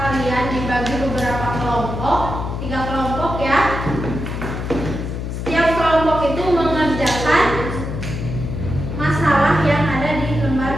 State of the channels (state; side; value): noise; left; hum, 5 dB below the sound